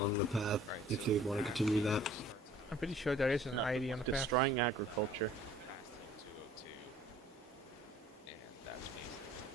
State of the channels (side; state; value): both; normal; correlation 0.53